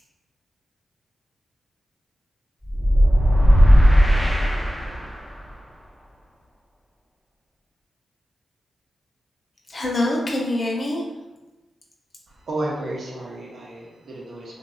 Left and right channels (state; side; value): normal; both; correlation 0.95